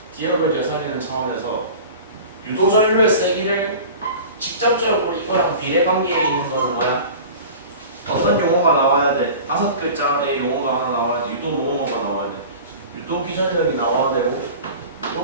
기억을 되살리는 차원에서 유도전류의 세기를 직접적으로 이거랑 비례관계에 있는 거는 뭐야? 어떤 용어가 나와야 돼? 5글자의 용어가 하나 나와야 돼. 유도 모노머가 나와야 돼. 유도 기전력이 나와야 되고,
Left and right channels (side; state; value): both; inverted; correlation -0.38